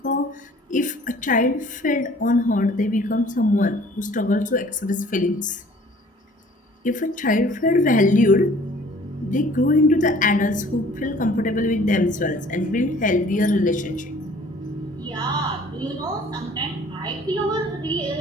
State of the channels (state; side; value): normal; both; correlation 0.52